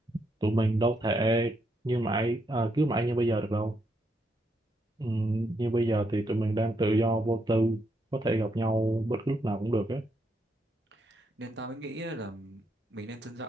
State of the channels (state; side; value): normal; both; correlation 0.78